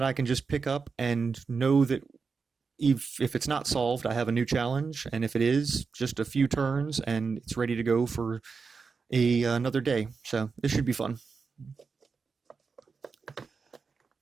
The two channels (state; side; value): quieter; left; 5.0 dB